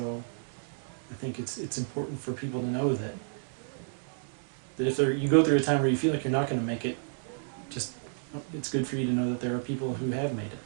I think it's important for people to know that if you go through a time where you feel like you're not going to make it, it's good for you to know that there are people who have made it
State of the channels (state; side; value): silent; left; digital silence